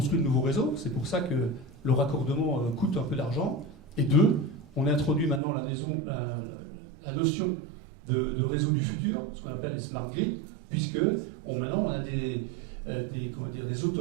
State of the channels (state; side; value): drops out; left; at 5.4 s